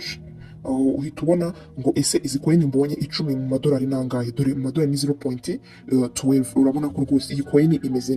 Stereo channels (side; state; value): both; identical; correlation 1.00